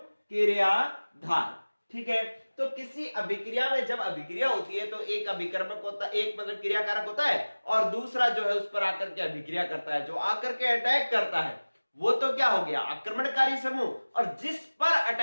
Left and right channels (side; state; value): both; inverted; correlation -1.00